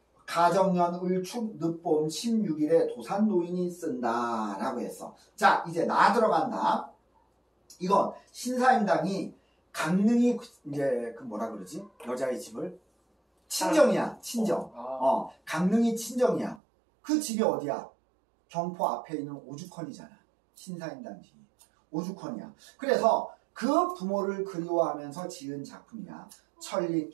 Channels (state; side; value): drops out; left; at 16.6 s